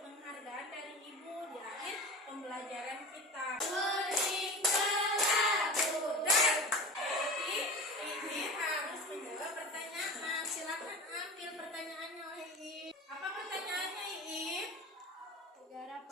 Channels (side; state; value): both; normal; correlation 0.34